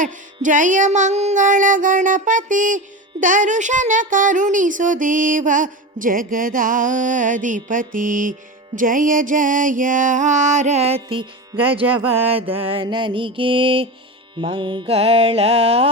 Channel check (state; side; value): normal; both; correlation 0.24